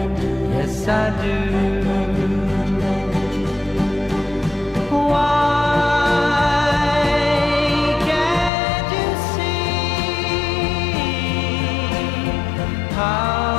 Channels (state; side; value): drops out; right; at 8.5 s